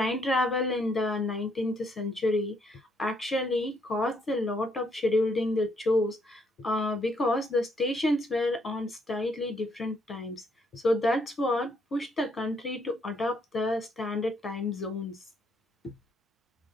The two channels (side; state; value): both; normal; correlation 0.71